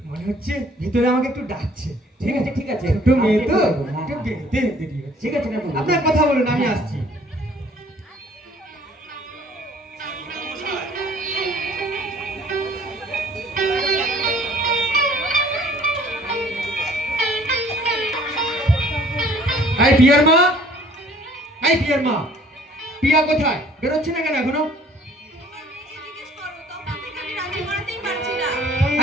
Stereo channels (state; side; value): normal; both; correlation 0.55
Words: মনে হচ্ছে ভিতরে আমাকে একটু ডাকছে। ঠিক আছে ঠিক আছে, ছোট মেয়ে তো, হ্যাঁ, একটু হ্যাঁ। বেরোতে দেরি হচ্ছে। ঠিক আছে নেপালবাবু। আপনার কথা বলুন, আমি আসছি। এই পিয়ার মা, এই পিয়ার মা, পিয়া কোথায়? বেরোচ্ছে না কেন এখনো?